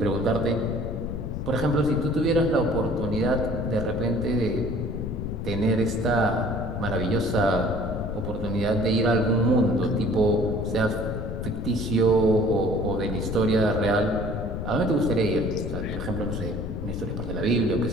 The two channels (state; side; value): noise; left; rumble, 5 dB below the sound